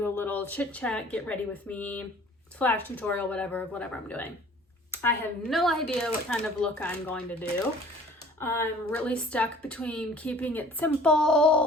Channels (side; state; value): both; normal; correlation 0.50